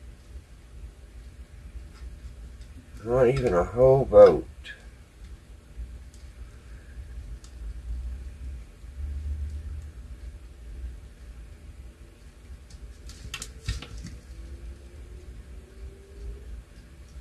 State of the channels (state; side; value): identical; both; correlation 1.00